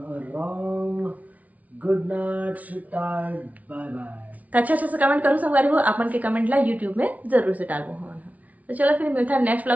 आराम good night sweet bye bye. तो अच्छे से कमेंट करूँ संगवारी हो आप मन के कमेंट ला यूट्यूब में जरूर से डालबो हमन। तो चलो फिर मिलता है नेक्स्ट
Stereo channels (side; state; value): left; late; 0.071 ms